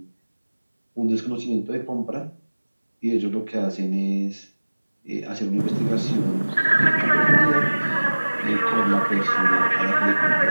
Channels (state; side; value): inverted; both; correlation -1.00